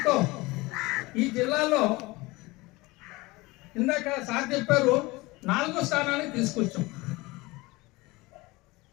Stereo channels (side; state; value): right; quieter; 22.2 dB